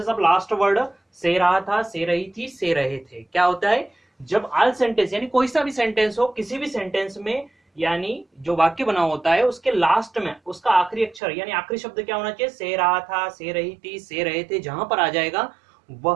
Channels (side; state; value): left; drops out; at 11.2 s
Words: of last word से रहा था, से रही थी, से रहे थे। क्या होता है जब ऑल सेंटेंस यानी कोई सा भी सेंटेंस हो, किसी भी सेंटेंस में यानी जो वाक्य बना होता है उसके लास्ट में उसका आखिरी अक्षर यानी आखिरी शब्द क्या होना चाहिए? से रहा था, से रही थी, से रहे थे। जहां पर आ जाएगा